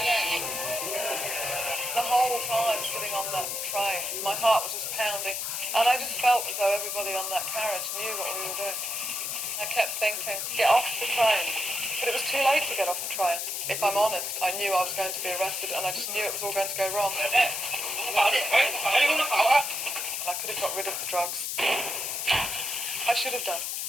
The whole time sitting on that train, my heart was just pounding. And I just felt as though everybody on that carriage knew what we were doing. I kept thinking, get off the train. But it was too late to get off the train. If I'm honest, I knew I was going to be arrested and I just knew it was all going to go wrong. And I could have got rid of the drugs. I should have done.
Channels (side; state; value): left; noise; hiss, 2 dB below the sound